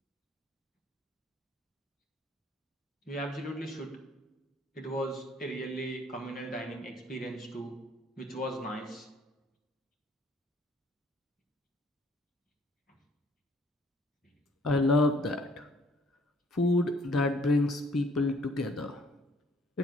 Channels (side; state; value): both; normal; correlation 0.61